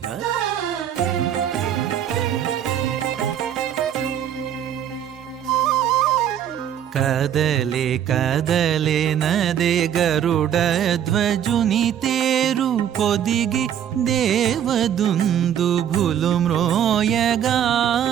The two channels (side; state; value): left; quieter; 9.7 dB